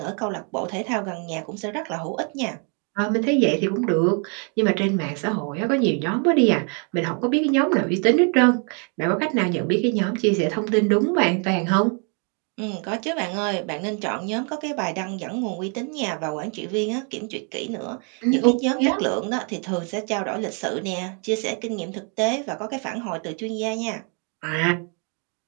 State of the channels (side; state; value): left; quieter; 38.4 dB